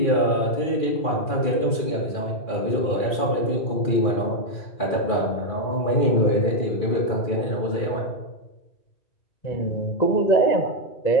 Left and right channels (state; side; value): late; right; 2.4 ms